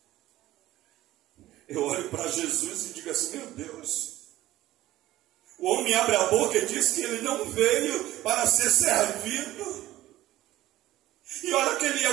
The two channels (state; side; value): quieter; left; 15.4 dB